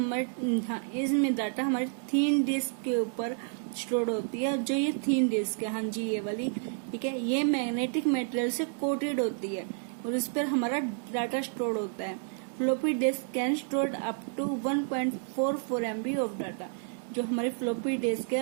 इसमें डाटा हमारी थिन डिस्क के ऊपर स्टोर होती है। जो ये थिन डिस्क है, हाँ जी ये वाली, ठीक है, ये मैग्नेटिक मटेरियल से कोटेड होती है और इस पर हमारा डाटा स्टोर होता है। Floppy disk can store up to 1.44 MB of data. जो हमारी फ्लॉपी डिस्क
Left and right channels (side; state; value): left; silent; 58 dB below the other